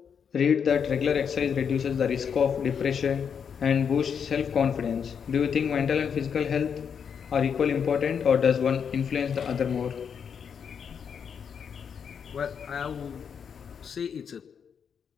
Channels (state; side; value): quieter; right; 7.1 dB